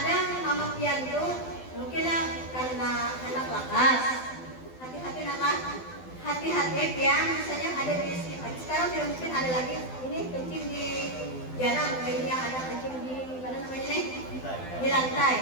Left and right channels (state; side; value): late; right; 12 ms